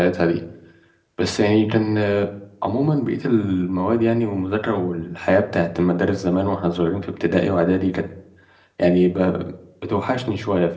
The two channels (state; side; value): identical; both; correlation 1.00